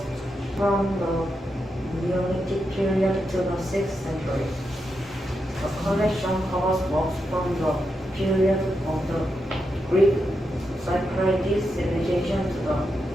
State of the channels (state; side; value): normal; both; correlation 0.85